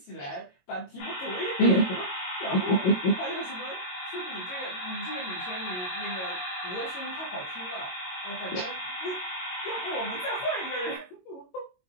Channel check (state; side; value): late; right; 22 ms